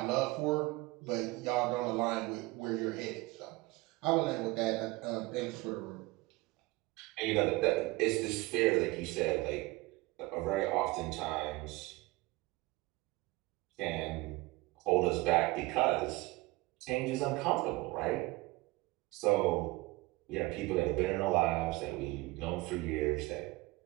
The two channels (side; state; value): left; quieter; 21.9 dB